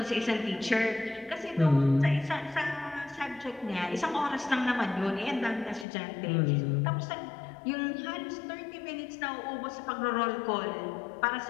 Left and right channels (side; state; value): right; drops out; at 5.9 s